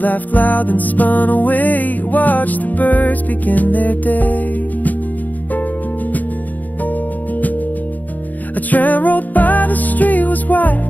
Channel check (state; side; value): late; right; 0.082 ms